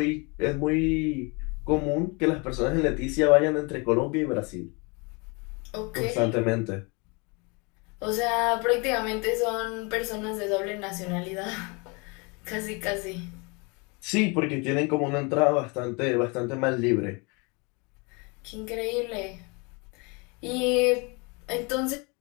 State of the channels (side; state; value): right; quieter; 30.2 dB